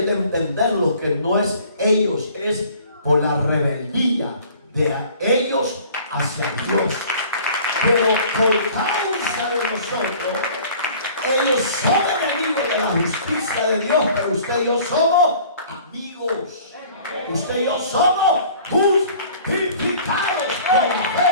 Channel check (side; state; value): both; inverted; correlation -0.50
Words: de entenderlo, que no es ellos, es por la rebeldía de ellos hacia Dios. Pero por causa de nosotros, ellos son enemigos de la justicia de Dios, pero usted y yo somos amigos. Usted y yo somos justificados por la